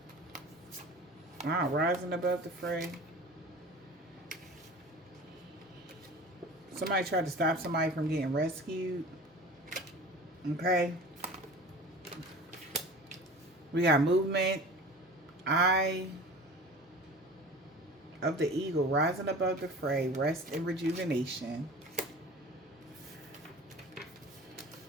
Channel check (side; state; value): both; normal; correlation 0.39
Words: wow, rising above the fray. Somebody tried to stop somebody from getting rescued. Okay. We got movement. Eye of the eagle, rising above the fray, rest and rejuvenation.